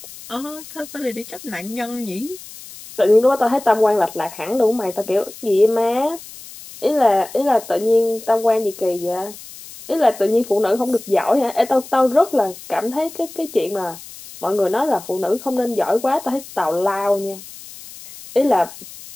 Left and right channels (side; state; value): left; noise; hiss, 16 dB below the sound